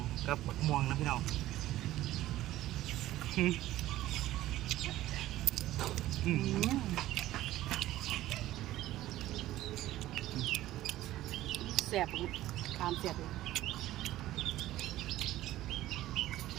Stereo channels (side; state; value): left; quieter; 15.0 dB